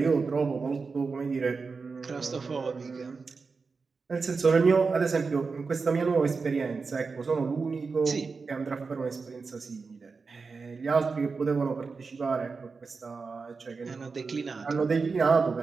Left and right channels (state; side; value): quieter; left; 4.6 dB